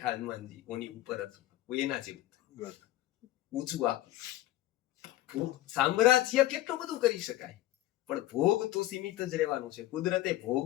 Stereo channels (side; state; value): right; quieter; 15.4 dB